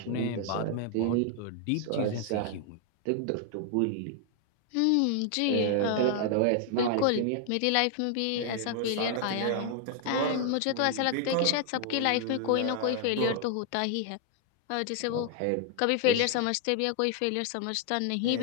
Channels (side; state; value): both; different; correlation 0.00